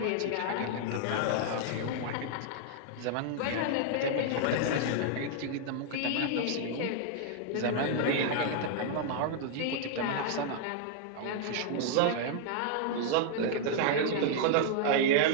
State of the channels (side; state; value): both; different; correlation -0.01